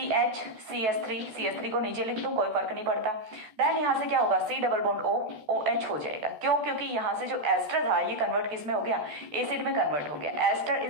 CH3 को नीचे लिख दूं कोई फर्क नहीं पड़ता। देन यहाँ से क्या होगा, C double bond O, OH हो जाएगा। क्यों, क्योंकि यहाँ से जो एस्टर था ये कन्वर्ट किस में हो गया, एसिड में कन्वर्ट हो गया। Ester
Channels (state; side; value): late; left; 14 ms